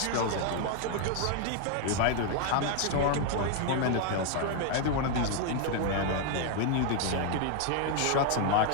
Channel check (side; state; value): both; different; correlation 0.00